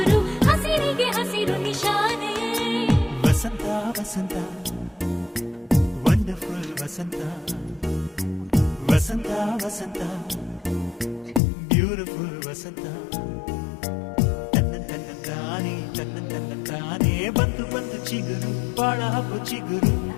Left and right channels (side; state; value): right; drops out; at 11.4 s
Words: ಹಸಿರಿಗೆ ಹಸಿರು ನಿಶಾನೆ ವಸಂತ ವಸಂತ ವಂಡರ್ಫುಲ್ ವಸಂತ ವಸಂತ ವಸಂತ ಬ್ಯೂಟಿಫುಲ್ ವಸಂತ ತನ್ನಂತಾನೆ ಬಂತು ಬಂತು ಚಿಗುರು ಬಾಳ ಹಬ್ಬ ಚಿಗುರು